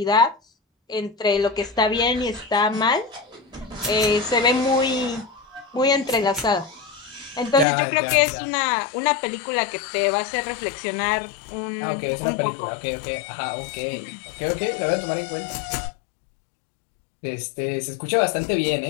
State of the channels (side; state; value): right; drops out; at 7.7 s